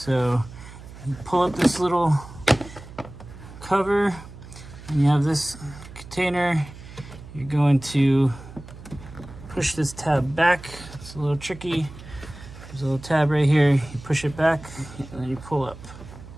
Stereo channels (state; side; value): noise; right; hum, 16 dB below the sound